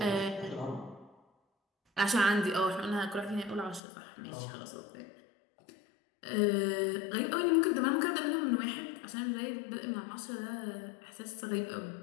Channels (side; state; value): right; drops out; at 3.8 s